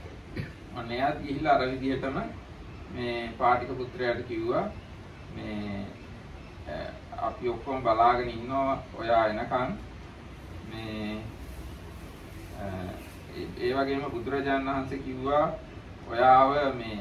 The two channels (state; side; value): identical; both; correlation 1.00